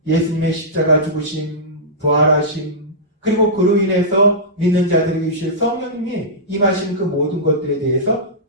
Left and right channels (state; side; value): normal; both; correlation -0.14